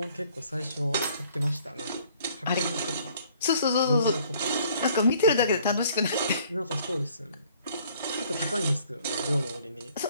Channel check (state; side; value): inverted; both; correlation -0.59